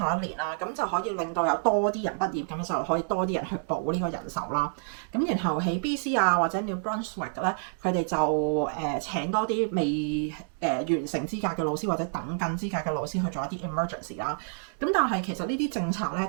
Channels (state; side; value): silent; left; digital silence